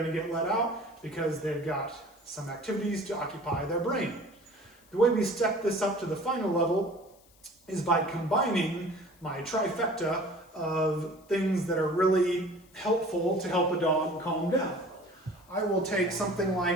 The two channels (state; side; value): noise; left; hiss, 29 dB below the sound